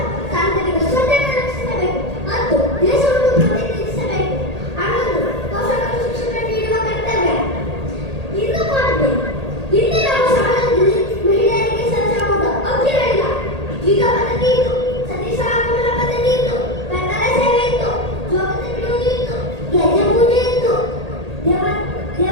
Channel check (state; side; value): late; left; 1.8 ms